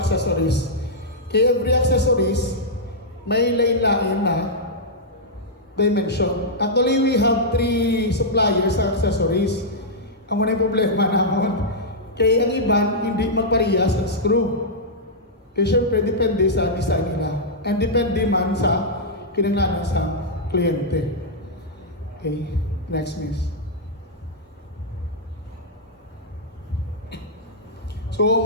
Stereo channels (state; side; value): normal; both; correlation -0.08